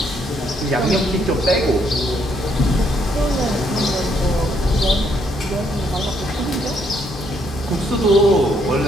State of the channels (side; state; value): both; normal; correlation 0.71